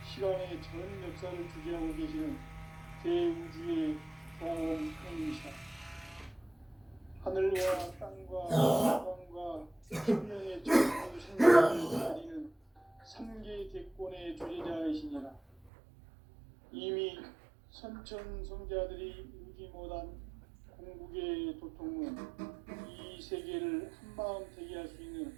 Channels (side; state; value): left; drops out; at 15.7 s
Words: 시간의 전 역사를 주재하고 계시는 대우주의 경험형이시다. 하늘과 땅과 태양과 생명의 전부 생명을 가리는 삼계 대권의 주제자이시니라. 이미 선천성자들이 이루지 못한 궁극의 도통은 이 세계를 한마음 되게 할 수 있는